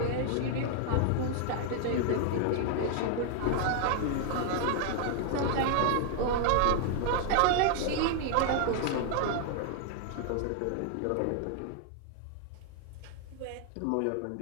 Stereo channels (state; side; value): different; both; correlation 0.00